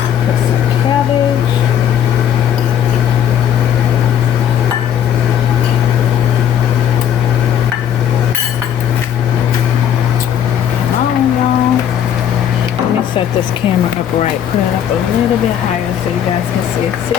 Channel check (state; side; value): quieter; right; 9.5 dB